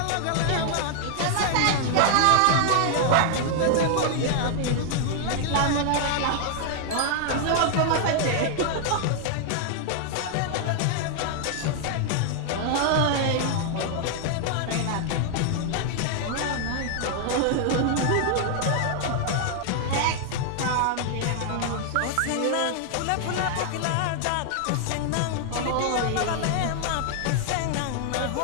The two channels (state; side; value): different; both; correlation 0.00